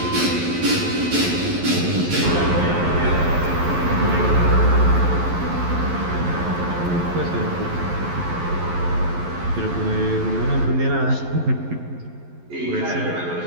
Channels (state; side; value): late; left; 11 ms